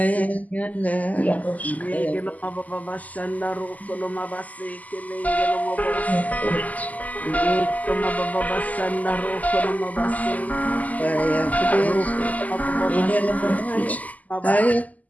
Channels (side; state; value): right; late; 0.077 ms